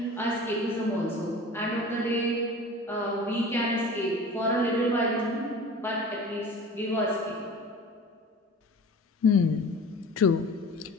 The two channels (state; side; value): normal; both; correlation 0.39